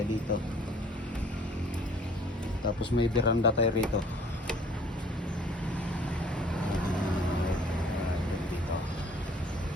dito. Tapos may veranda tayo rito.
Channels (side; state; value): both; normal; correlation 0.55